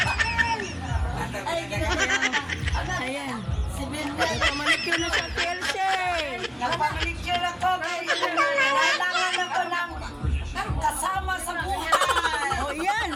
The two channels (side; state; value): both; identical; correlation 1.00